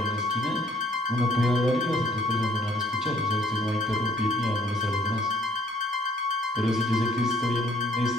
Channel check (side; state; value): both; normal; correlation 0.60